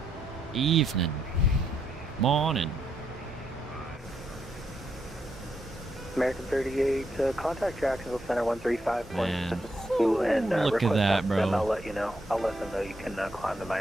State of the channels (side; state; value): both; normal; correlation 0.78